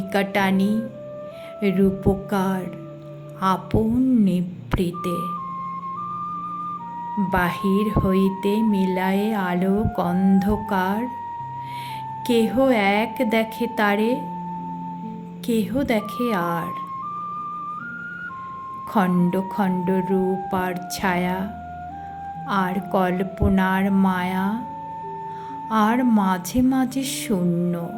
টানি, রূপকার আপন নিভৃতে। বাহির হইতে মিলায়ে আলোক অন্ধকার, কেহ এক দেখে তারে, কেহ দেখে আর। খণ্ড খণ্ড রূপ আর ছায়া, আর কল্পনার মায়া, আর মাঝে মাঝে শূন্য।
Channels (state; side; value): identical; both; correlation 1.00